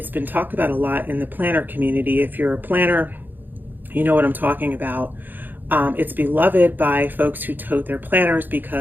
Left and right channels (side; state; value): left; late; 0.090 ms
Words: been talked about a lot in the planner community. If you're a planner, you know what I'm talking about. It's beloved by folks who tote their planners